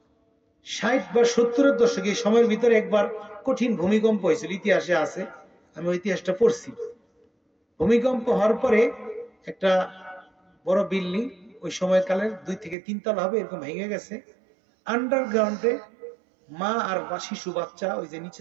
বা 70-এর দশকে এই সময়ের ভিতরে একবার কঠিন ভূমিকম্প হয়েছিল, ইতিহাসে আছে, আমি ওই ইতিহাসটা পড়ছি। ভূমিকম্প হওয়ার পরে একটা বড় বিল্ডিং, ওই সময়কালের 2 থেকে 3 তলা হবে, এরকম ভেঙে গেছে। আন্ডারগ্রাউন্ডে মা আর শিশু বাচ্চা ওই যে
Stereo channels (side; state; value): left; drops out; at 12.8 s